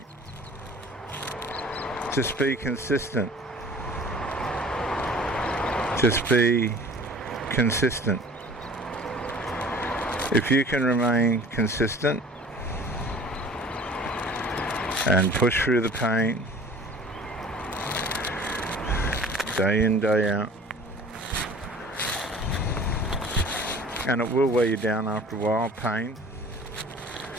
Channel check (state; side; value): normal; both; correlation 0.47